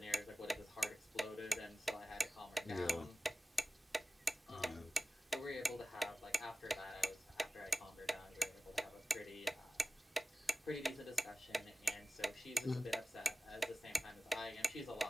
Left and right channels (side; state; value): both; normal; correlation 0.96